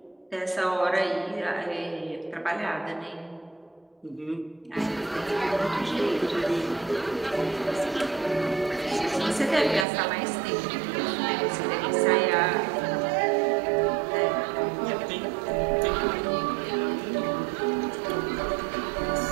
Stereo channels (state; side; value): drops out; left; at 9.9 s